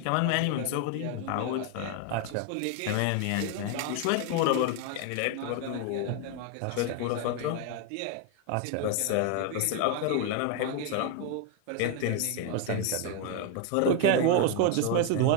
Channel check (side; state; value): both; different; correlation 0.01